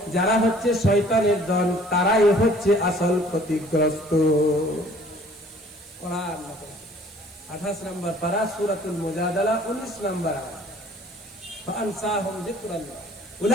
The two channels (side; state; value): right; noise; hiss, 24 dB below the sound